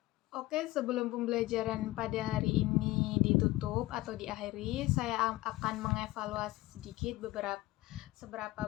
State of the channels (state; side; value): quieter; right; 18.1 dB